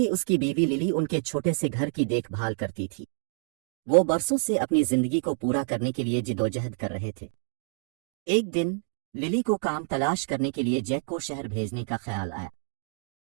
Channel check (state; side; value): silent; left; 60 dB below the other